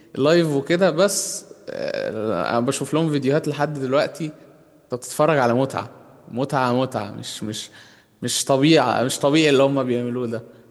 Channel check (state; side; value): identical; both; correlation 1.00